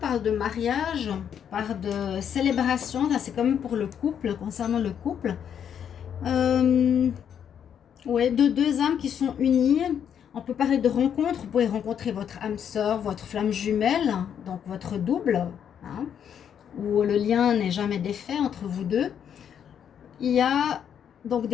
de mariage, parle de célébration. Là, c'est quand même pour le couple, concernant le couple. Ouais, de deux âmes qui sont unies. On peut parler de rencontre. Vous pouvez rencontrer votre âme sœur, votre flamme jumelle, donc votre double, hein, où le lien n'est jamais défait entre vous deux. Il y a donc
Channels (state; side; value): quieter; right; 8.6 dB